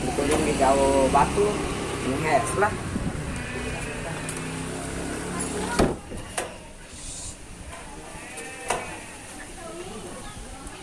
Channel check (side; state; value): both; identical; correlation 1.00